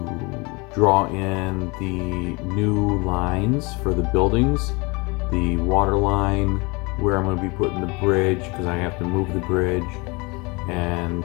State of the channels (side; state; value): right; quieter; 27.2 dB